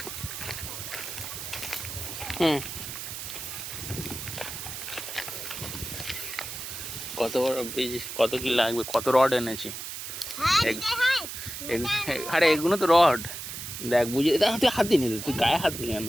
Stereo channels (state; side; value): noise; right; hiss, 8 dB below the sound